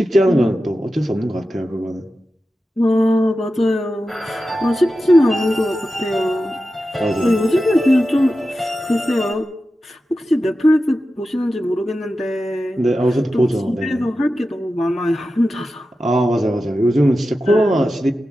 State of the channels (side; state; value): both; normal; correlation 0.92